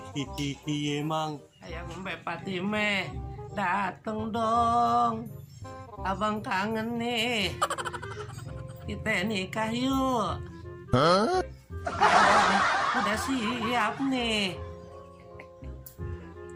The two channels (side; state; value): both; identical; correlation 1.00